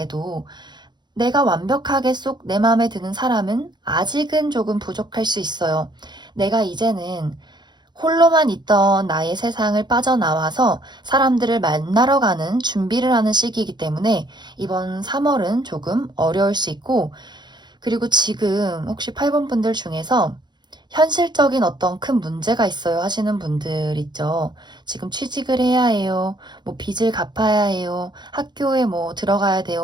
내가 완벽하게 쏙 내 마음에 드는 사람은 아직은 조금 부족할 수 있어요. 내가 이제는 홀로만 있던 나의 세상을 빠져나와서 사람들을 만나러 가는 준비를 하는 시기이기 때문에 이번 3월은 조금 어려울 수 있고, 그리고 지금 혹시 8번 분들 중에서 현실적인 어떤 큰 문제가 있어요 하시는 분들 있죠. 지금 취직을 해야 해요. 뭐 빚을 갚아야 해요. 학교에 뭐 들어가야 돼요.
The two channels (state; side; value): late; left; 0.21 ms